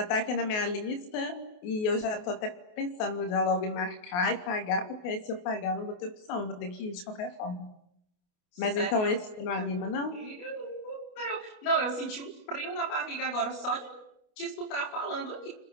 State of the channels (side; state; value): right; late; 28 ms